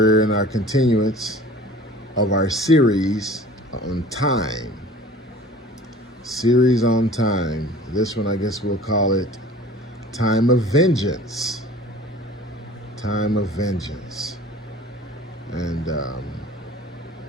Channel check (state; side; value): normal; both; correlation 0.45